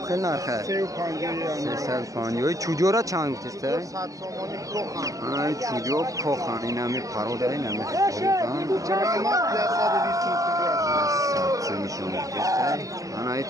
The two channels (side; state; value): left; late; 0.16 ms